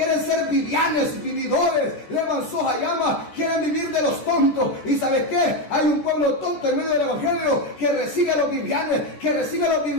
ser vivianes, vividores. Llama, quieren vivir de los tontos. ¿Y sabes qué? Hay un pueblo tonto en medio del evangelio que recibe a los vivianes, que recibe a los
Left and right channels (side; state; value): right; late; 14 ms